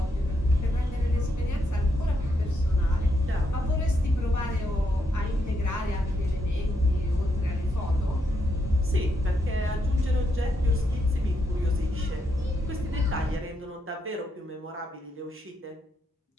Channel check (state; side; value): normal; both; correlation 0.80